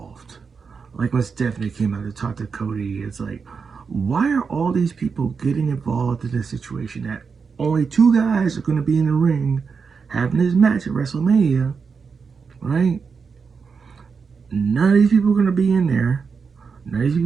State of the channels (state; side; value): quieter; left; 5.5 dB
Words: Like when Stephanie came out to talk to Cody, it's like, why are all these people getting involved in this situation that only two guys are going to be in the ring having this match at WrestleMania, right? None of these people are going to be in there. None of these